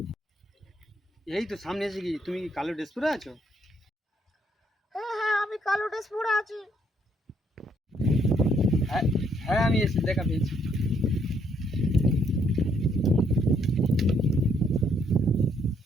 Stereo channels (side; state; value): both; normal; correlation 0.70